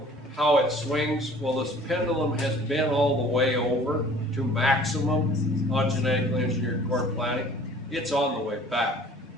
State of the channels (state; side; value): normal; both; correlation 0.50